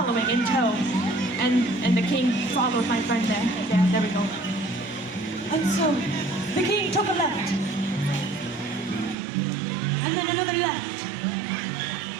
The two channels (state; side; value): drops out; left; at 9.2 s